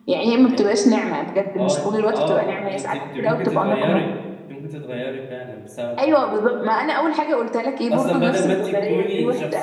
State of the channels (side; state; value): both; identical; correlation 1.00